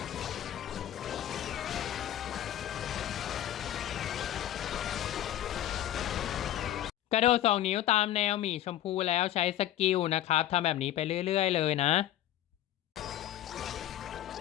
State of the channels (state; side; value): quieter; right; 12.4 dB